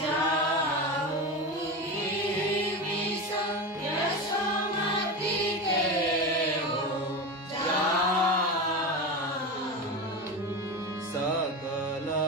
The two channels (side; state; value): both; normal; correlation 0.22